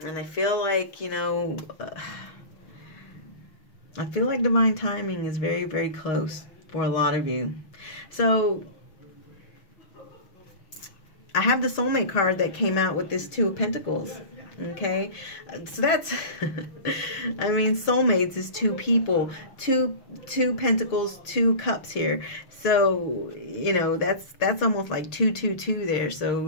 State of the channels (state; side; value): late; right; 6.4 ms